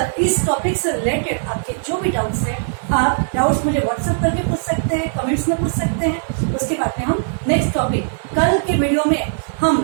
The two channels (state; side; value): silent; left; 66 dB below the other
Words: इस टॉपिक से रिलेटेड आपके जो भी डाउट्स हैं, आप डाउट्स मुझे व्हाट्सएप करके पूछ सकते हैं, कमेंट्स में पूछ सकते हैं। उसके बाद में हम नेक्स्ट टॉपिक कल के वीडियो में हम